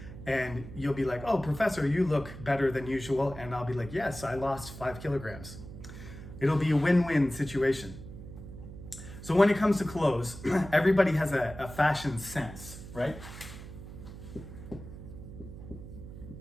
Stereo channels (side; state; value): right; noise; hum, 13 dB below the sound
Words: and you'll be like, "Oh, professor, you look better than usual." And I'll be like, "Yes, I lost 5 kilograms." It'll be a win-win situation. So when it comes to clothes, everybody has a fashion sense, right?